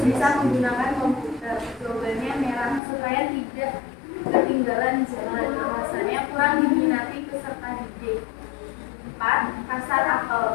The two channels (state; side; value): drops out; right; at 2.8 s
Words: menggunakan komputer. Jawabannya merah supaya tidak ketinggalan zaman. Alasannya kurang diminati peserta didik. 4. Pasar